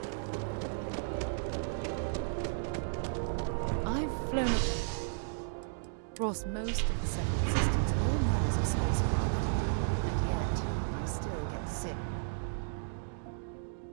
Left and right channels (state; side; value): silent; left; digital silence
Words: I've flown across most of the seven systems, all models of spacecraft, and yet I still get sick.